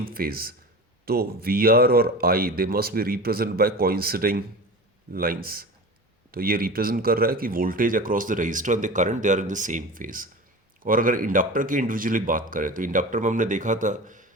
phase, तो VR और I they must be represent by coinciding lines. तो ये रिप्रेजेंट कर रहा है कि voltage across the resistor and the current they are in the same phase. और अगर इंडक्टर की इंडिविजुअली बात करें तो इंडक्टर में हमने देखा था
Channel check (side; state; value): both; normal; correlation 0.32